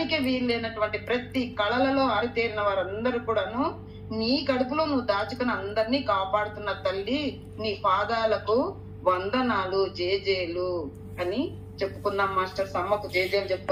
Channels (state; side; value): identical; both; correlation 1.00